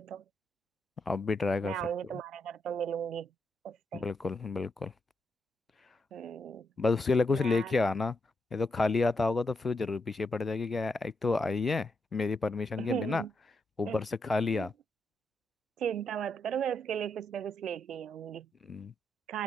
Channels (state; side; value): normal; both; correlation 0.81